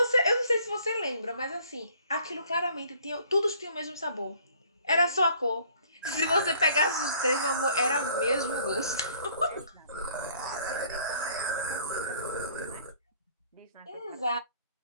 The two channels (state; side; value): inverted; both; correlation -0.58